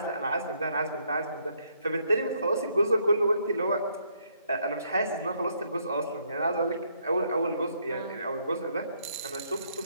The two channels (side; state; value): both; inverted; correlation -0.71